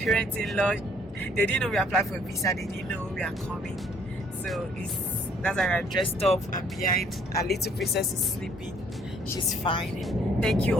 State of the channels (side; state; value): both; normal; correlation 0.62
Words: They didn't know we applied for a visa, they didn't know we are coming, so that's why we're dressed up, and behind our little princess is sleeping. She's fine. Thank you